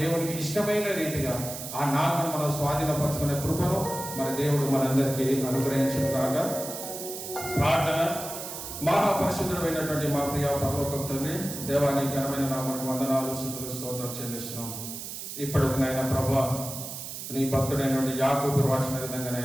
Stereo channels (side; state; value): right; noise; hiss, 8 dB below the sound